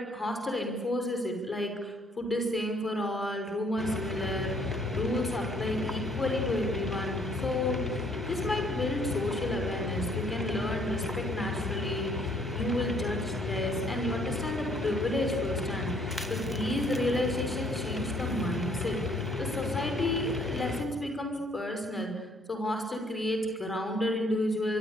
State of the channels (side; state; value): both; normal; correlation 0.64